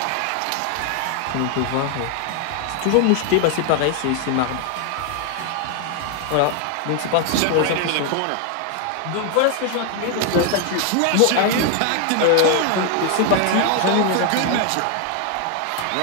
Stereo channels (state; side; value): different; both; correlation 0.00